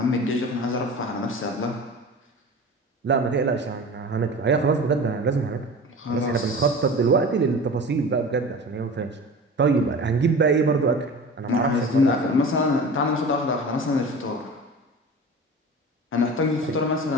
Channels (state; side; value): normal; both; correlation 0.36